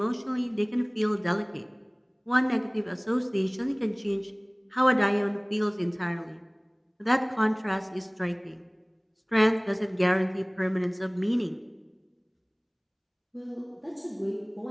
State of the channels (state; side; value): identical; both; correlation 1.00